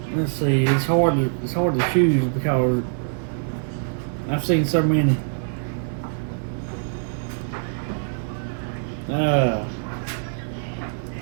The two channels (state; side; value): silent; left; digital silence